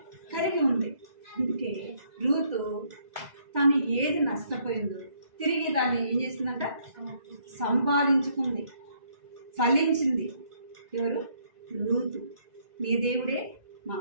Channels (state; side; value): late; left; 2.0 ms